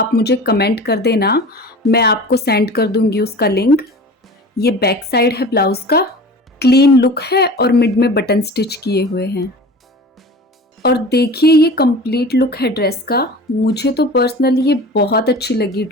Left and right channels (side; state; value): both; normal; correlation 0.38